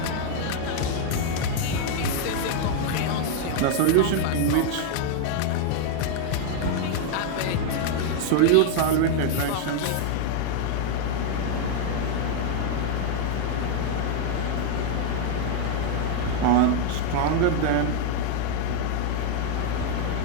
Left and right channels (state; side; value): different; both; correlation 0.00